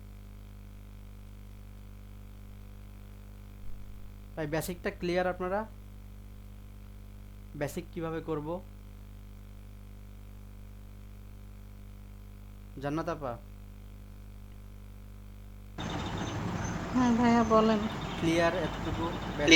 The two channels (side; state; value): both; identical; correlation 1.00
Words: তাই বেসিকটা ক্লিয়ার আপনারা, বেসিক কিভাবে করব। জান্নাত আপা, হ্যাঁ ভাইয়া বলেন। ক্লিয়ার এতটুকু